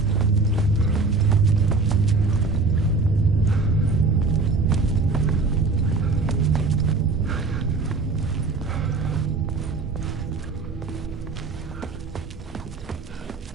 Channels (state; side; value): quieter; left; 3.9 dB